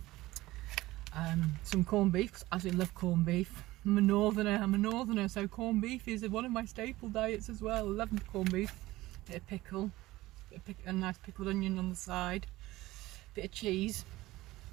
Some corned beef, because I absolutely love corned beef. I'm a northerner, so corned beef is one of my staple diets as well. I love corned beef. Bit of pickle, a nice pickled onion on the side, bit of cheese.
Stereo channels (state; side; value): quieter; left; 18.0 dB